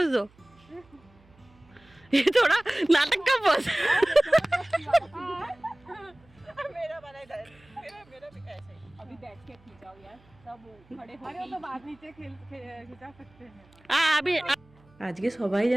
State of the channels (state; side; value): noise; right; hum, 29 dB below the sound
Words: दो, ये थोड़ा नाटक का बोल। मेरा वाला इधर, मेरा भी ऐसे ही। अभी बैठ के खींचाओ यार, सब खड़े हो। अरे वो तो बाद नीचे खिंचा सकते हैं। अभी আজকে সবাই